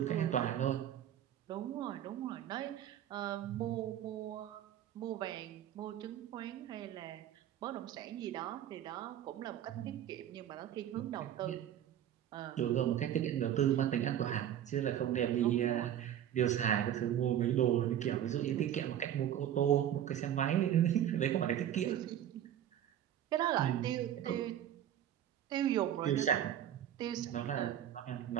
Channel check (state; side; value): quieter; left; 10.8 dB